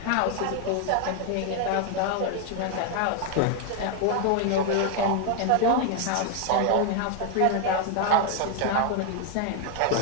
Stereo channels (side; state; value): both; different; correlation 0.00